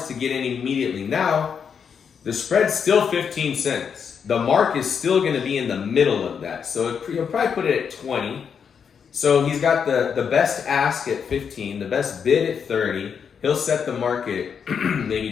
to get in immediately. Now, the spread's still 15 cents. The mark is still going to be in the middle of that. So you'll probably put it at 20. So he's got the best ask at 15, the best bid at 30. He'll set the market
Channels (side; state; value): right; quieter; 6.9 dB